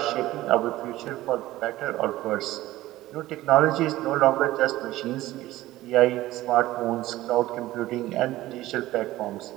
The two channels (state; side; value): quieter; left; 16.4 dB